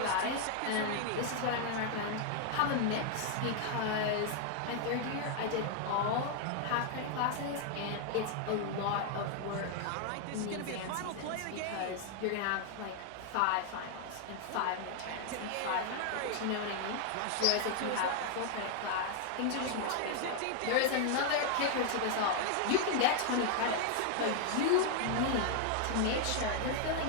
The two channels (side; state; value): both; different; correlation 0.00